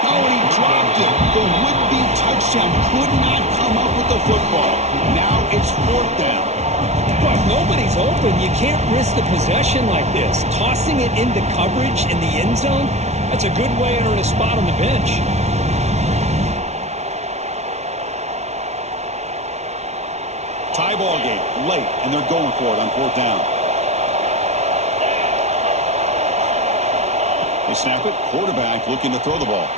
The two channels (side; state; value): left; late; 0.32 ms